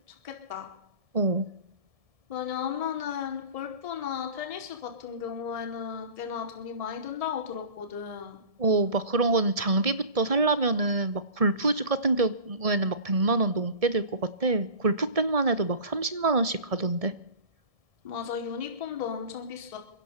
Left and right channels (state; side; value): late; left; 1.7 ms